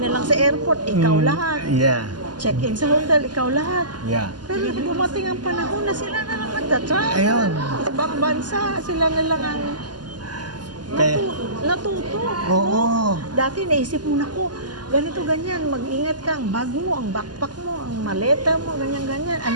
na lang sa airport, ikaw lahat. Yeah. Check-in sa hotel, ikaw lahat. Yeah. Pero dumating ang panahon na sila na lang nagtatravel. Ayun. Ibang bansa, sila na lang ang natuto. Oo. Dati naisip mo na ko, ganito, ganyan, mag-ingat ka, ang bag mo, ang backpack mo, ang maleta mo, ganyan, ganyan.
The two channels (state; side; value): late; left; 0.70 ms